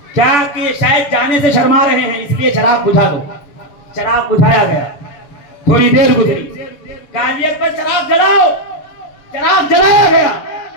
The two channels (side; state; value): right; late; 6.8 ms